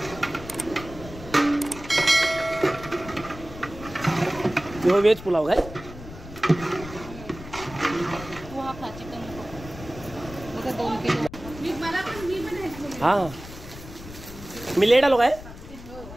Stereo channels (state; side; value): noise; left; rumble, 14 dB below the sound